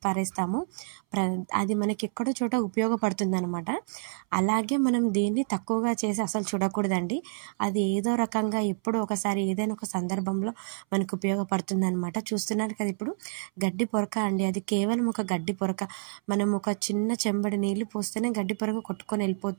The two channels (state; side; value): silent; left; 59 dB below the other